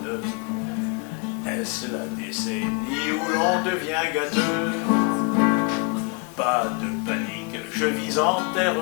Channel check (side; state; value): right; quieter; 31.4 dB